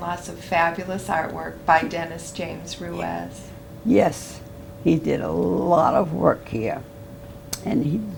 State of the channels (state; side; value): identical; both; correlation 1.00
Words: lots of fabulous artwork by Dennis James Ruiz. Yes, he did a lot of work here, and he